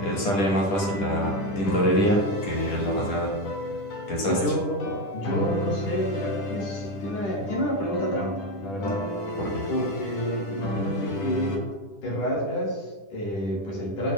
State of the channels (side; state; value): right; late; 10 ms